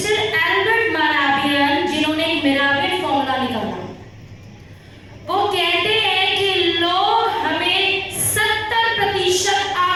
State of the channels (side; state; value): both; identical; correlation 1.00